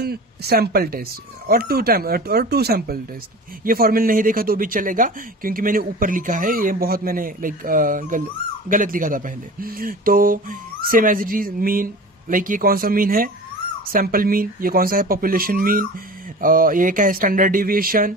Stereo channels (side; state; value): both; normal; correlation 0.36